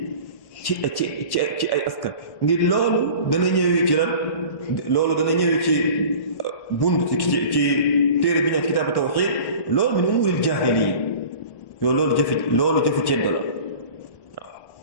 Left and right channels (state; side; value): late; right; 1.1 ms